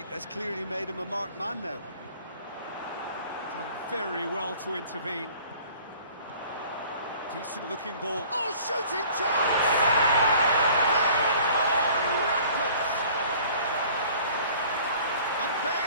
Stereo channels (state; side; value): inverted; both; correlation -0.51